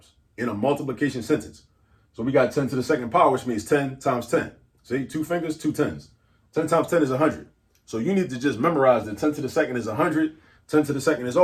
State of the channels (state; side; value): identical; both; correlation 1.00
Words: in a multiplication sentence. So we got 10 to the second power, which means 10 times 10. See, 2 fingers, 2 tens. 10 times 10 is 100. So you need to just memorize that 10 to the second is 100. 10 to the second is